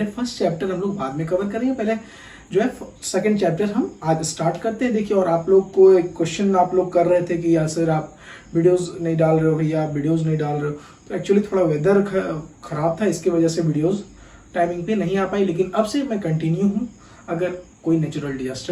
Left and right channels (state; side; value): identical; both; correlation 1.00